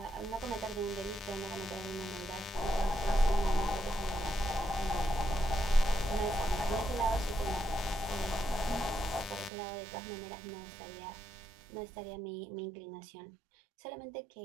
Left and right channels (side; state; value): left; drops out; at 9.5 s